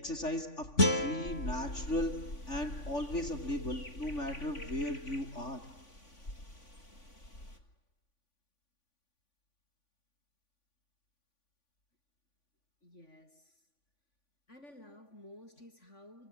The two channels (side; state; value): right; late; 3.5 ms